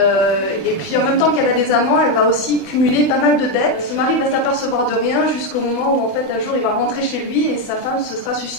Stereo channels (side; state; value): right; late; 24 ms